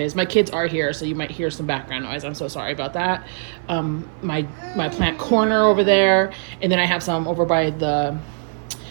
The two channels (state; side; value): silent; left; digital silence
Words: My kids are here, so you might hear some background noise. I'm so sorry about that. My plant corner over there, and then I have some over by the